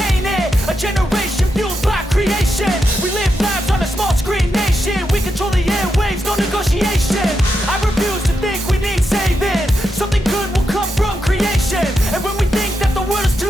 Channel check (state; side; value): normal; both; correlation 0.85